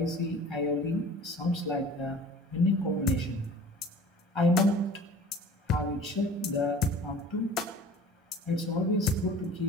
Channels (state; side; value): normal; both; correlation 0.44